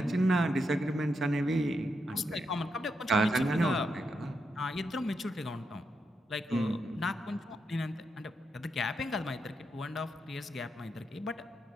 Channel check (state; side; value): normal; both; correlation 0.83